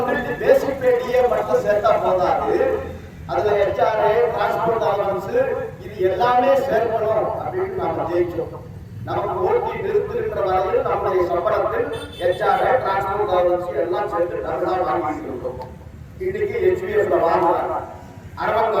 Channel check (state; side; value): identical; both; correlation 1.00